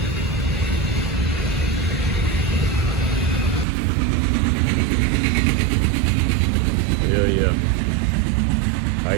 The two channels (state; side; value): drops out; left; at 3.7 s